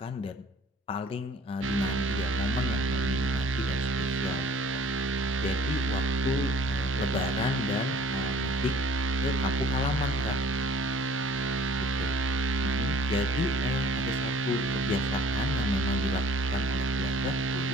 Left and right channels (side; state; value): both; normal; correlation 0.51